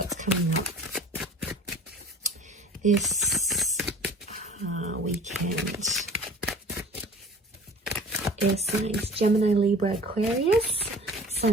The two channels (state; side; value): normal; both; correlation 0.45